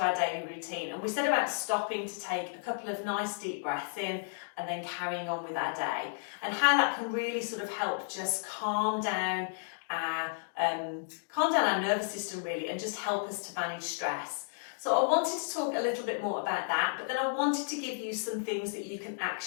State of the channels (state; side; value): silent; right; digital silence